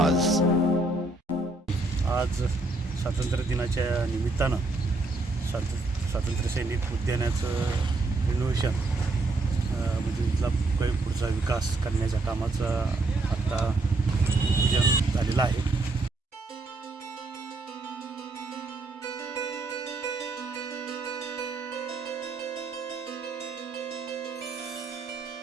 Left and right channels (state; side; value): quieter; left; 3.1 dB